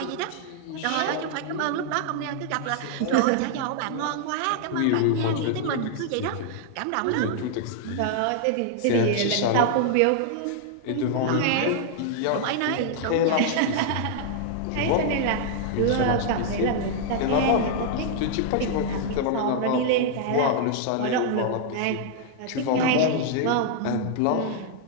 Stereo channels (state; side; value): different; both; correlation -0.01